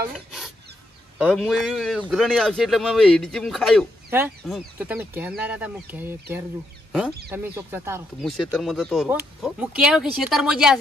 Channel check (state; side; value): normal; both; correlation 0.79